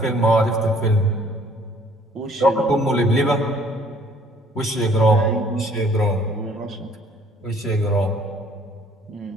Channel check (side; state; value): both; normal; correlation 0.58